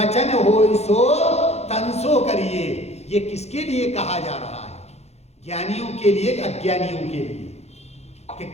हो सो तन सो करिए। ये किसके लिए कहा जा रहा है, ज्ञानियों के लिए, अज्ञानियों के लिए, कि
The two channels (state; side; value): late; right; 0.31 ms